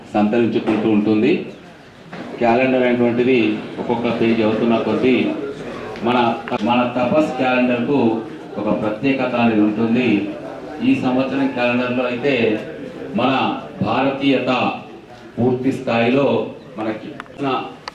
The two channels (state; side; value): identical; both; correlation 1.00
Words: సంతరించుకుంటూ ఉంటుంది. క్యాలెండర్ అనేటువంటిది ఒక్కొక్క పేజీ అవుతున్న కొద్దీ మన తపస్ క్యాలెండర్కు ఒక ప్రత్యేకత అనేది ఉంటుంది. ఈ సంవత్సరం క్యాలెండర్లో అయితే మన భారతీయత పూర్తి స్థాయిలో మనకి